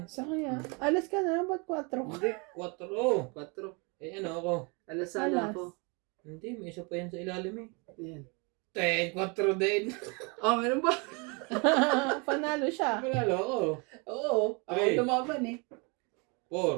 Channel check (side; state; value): left; quieter; 31.4 dB